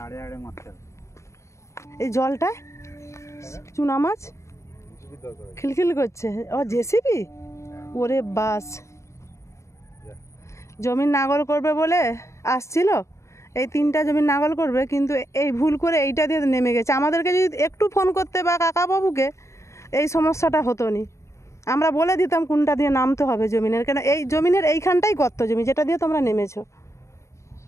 এই জলটা চুনা মাছ খিলখিল করছে। ও জেসিবি, ওরে বাস। জমির নাগল করবে বলে আসছিল, এই 3টা জমির নাগল করবে, কিন্তু এই ভুল করে এইটা দিয়ে নেমে গেছে। আমাদেরকে যদি একটু ফোন করতে বা কাকাবাবুকে, এই সমস্যাটা হতো নি। আমরা বলে দিতাম কোনটা দিয়ে নামতে হবে জমিনের, কেন এই জমিনের এইখানটাই গর্ত জমি যেটা দিয়ে তোমরা নেমেছো।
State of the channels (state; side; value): late; right; 0.14 ms